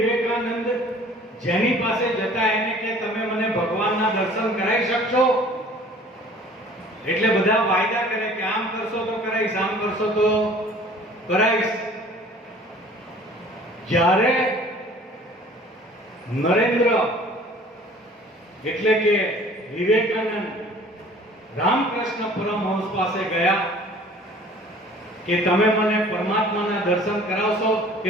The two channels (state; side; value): normal; both; correlation 0.50